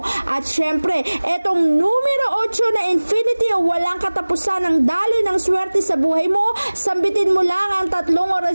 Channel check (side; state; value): both; inverted; correlation -1.00